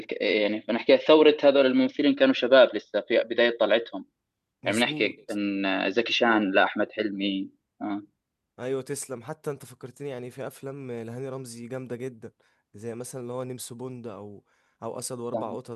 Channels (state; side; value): identical; both; correlation 1.00